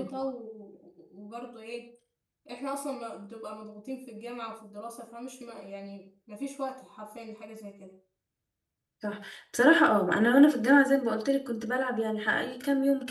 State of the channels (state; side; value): identical; both; correlation 1.00